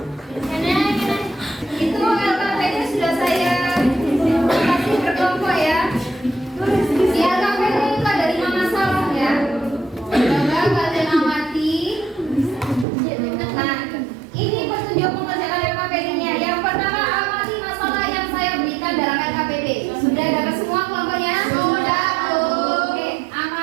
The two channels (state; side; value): drops out; left; at 12.9 s